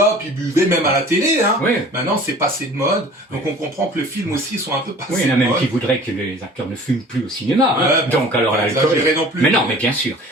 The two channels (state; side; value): normal; both; correlation 0.46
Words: ils buvaient même à la télé. Oui. Maintenant, c'est passé de mode. Donc, on comprend que le film aussi sont un peu passés Oui, il y en a de même mode. qui voudraient que les acteurs ne fument plus au cinéma. Ouais, Donc, alors pas l'alcool. exagérer non plus. Mais non, mais bien sûr.